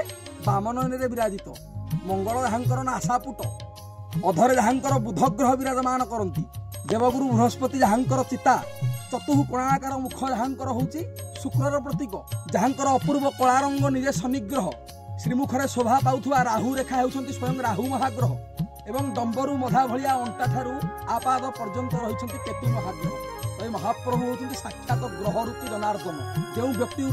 बाम नयन विराजित मंगल जहाँकर नासापुट अधरे जहाँकर बुध ग्रह विराजमान करती देवगुरु बृहस्पति जहाँकर चिता चतुः कोणाकार मुख जहाँकर होची शुक्रर प्रतीक जहाँकर अपूर्व कला रंग निजे शनिग्रह श्रीमुखरे शोभा पाउथुवा राहु रेखा होउछंती स्वयं राहु महाग्रह एवं डंबरू मधा भलिया अंटा ठारू आपाद पर्यंत रही केतु महाग्रह महाप्रभु होती साक्षात ग्रह रूपी जनार्दन जो व्यक्ति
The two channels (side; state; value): both; identical; correlation 1.00